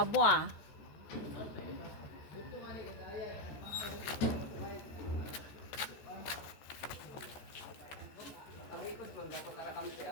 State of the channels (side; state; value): right; late; 14 ms